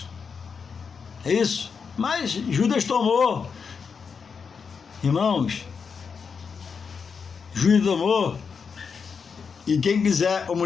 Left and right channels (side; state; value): right; quieter; 5.9 dB